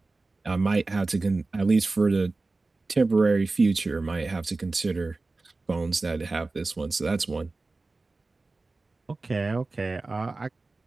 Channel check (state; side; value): quieter; left; 3.4 dB